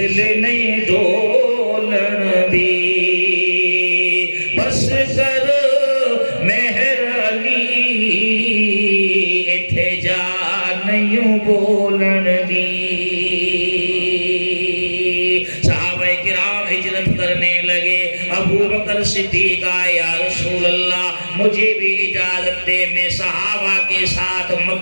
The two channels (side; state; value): both; inverted; correlation -1.00